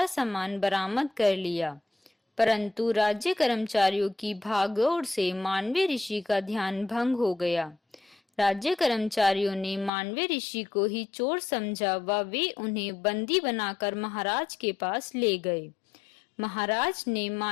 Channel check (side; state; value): right; drops out; at 9.9 s